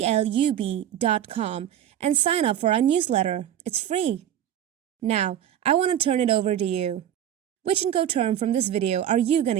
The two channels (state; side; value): quieter; left; 10.6 dB